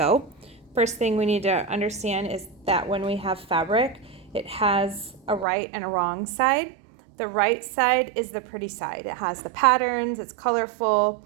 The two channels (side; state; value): left; drops out; at 5.5 s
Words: First thing we need to understand is that when we have fabric, it has a right and a wrong side. The right side is the pretty side. It has the patterns, it's colorful,